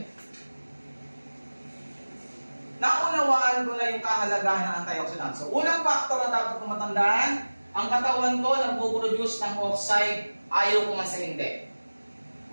Naunawaan ko na yung kahalagahan ng antioxidants. So, unang factor na dapat kong matandaan, ang katawan ko nagpo-produce ng oxide, ayaw ko man sa hindi.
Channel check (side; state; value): both; inverted; correlation -1.00